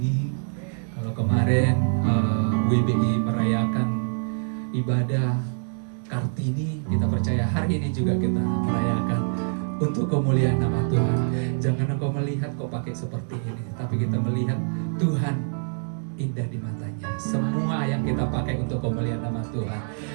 Kalau kemarin WBI merayakan ibadah Kartini, kita percaya hari ini juga kita merayakan untuk kemuliaan nama Tuhan. Jangan engkau melihat kok pakai seperti ini, tapi kita melihat Tuhan indah di matanya. Semua yang kita pakai untuk kemuliaan nama Tuhan.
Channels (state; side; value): silent; left; digital silence